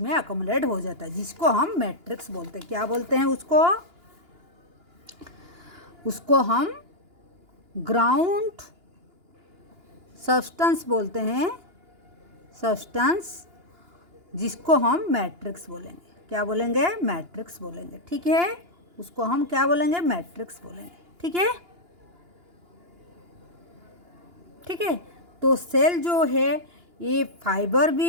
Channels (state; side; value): late; left; 2.9 ms